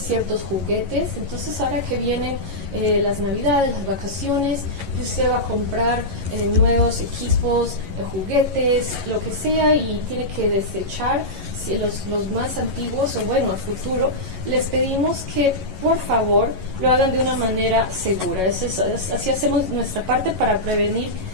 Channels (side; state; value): left; late; 11 ms